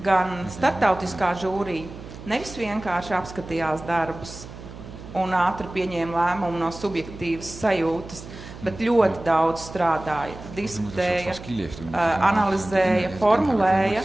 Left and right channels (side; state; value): right; noise; hum, 14 dB below the sound